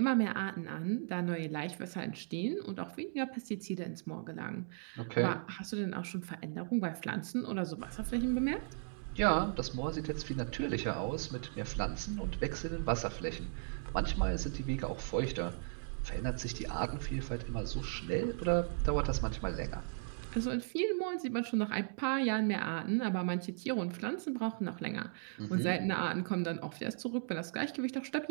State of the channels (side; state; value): left; silent; digital silence